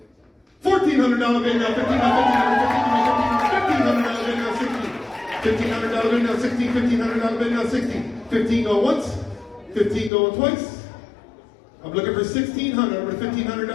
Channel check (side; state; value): right; drops out; at 10.1 s